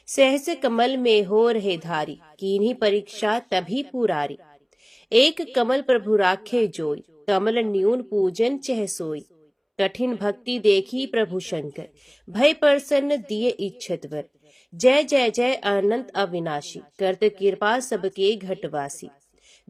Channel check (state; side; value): identical; both; correlation 1.00